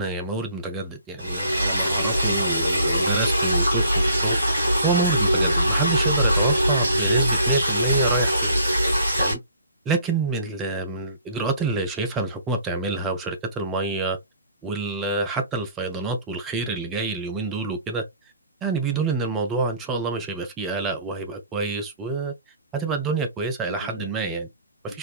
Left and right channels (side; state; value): both; inverted; correlation -0.54